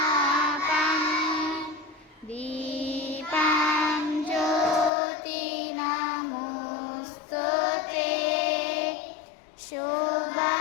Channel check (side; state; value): right; drops out; at 4.9 s